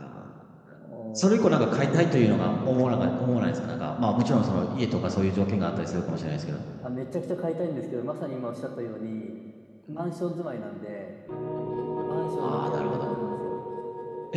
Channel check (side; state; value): both; identical; correlation 1.00